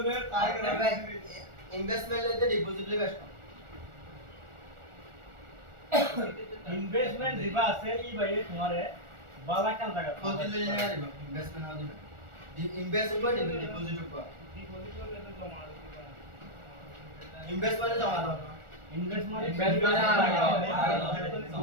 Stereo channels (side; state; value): left; late; 1.4 ms